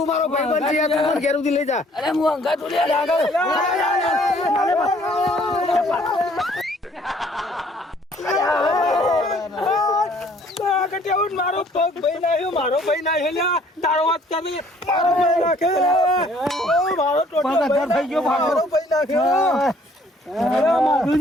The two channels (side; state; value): both; normal; correlation 0.59